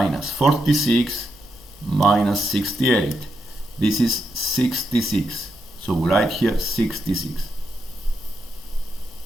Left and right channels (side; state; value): both; normal; correlation 0.83